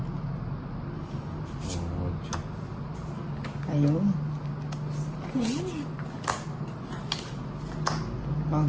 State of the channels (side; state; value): both; identical; correlation 1.00